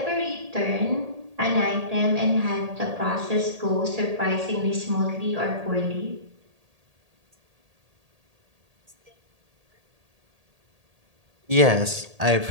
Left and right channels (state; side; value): late; left; 1.8 ms